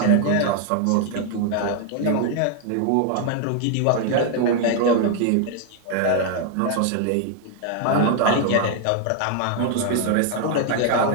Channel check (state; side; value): different; both; correlation 0.00